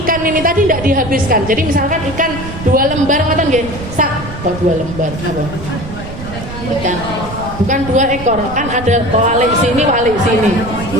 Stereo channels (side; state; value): right; noise; rumble, 11 dB below the sound